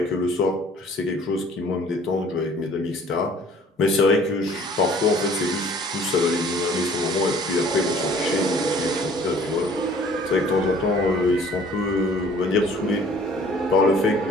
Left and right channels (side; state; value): both; normal; correlation 0.54